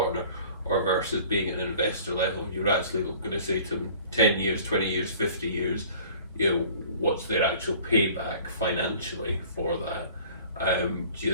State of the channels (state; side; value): inverted; both; correlation -0.48